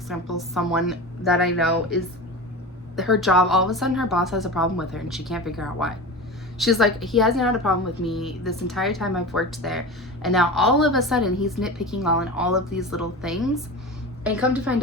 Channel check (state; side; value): normal; both; correlation 0.29